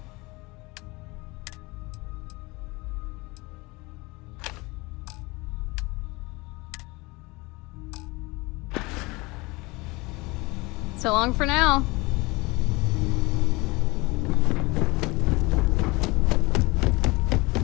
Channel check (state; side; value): quieter; right; 24.0 dB